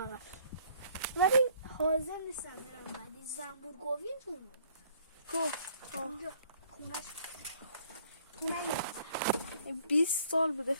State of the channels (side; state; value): both; inverted; correlation -0.60